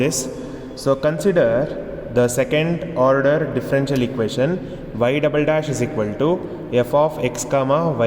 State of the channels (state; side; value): identical; both; correlation 1.00